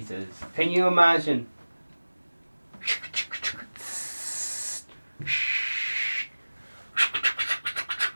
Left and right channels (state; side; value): inverted; both; correlation -1.00